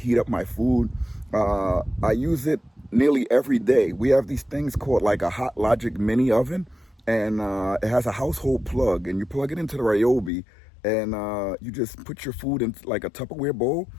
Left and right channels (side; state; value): right; drops out; at 10.3 s